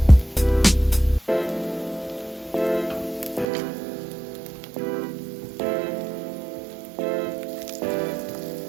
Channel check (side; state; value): left; drops out; at 3.5 s